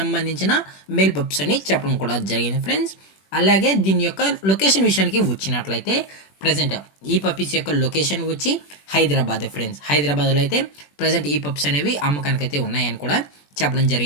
మేల్ పప్స్ అని చెప్పడం కూడా జరిగింది ఫ్రెండ్స్. అలాగే దీని యొక్క లొకేషన్ విషయానికి వచ్చినట్లయితే ప్రజెంట్ ఈ పప్పీస్ యొక్క లొకేషన్ వచ్చి హైదరాబాద్ ఫ్రెండ్స్. హైదరాబాద్లో అయితే ప్రజెంట్ ఈ పప్స్ అనేవి అమ్మకానికి అయితే ఉన్నాయని కూడా చెప్పడం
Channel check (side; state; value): right; late; 21 ms